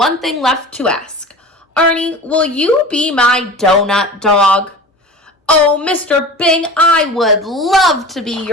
thing left to ask. Arnie, will you be my donut dog? Oh, Mr. Bing, I would love to be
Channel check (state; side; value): normal; both; correlation 0.36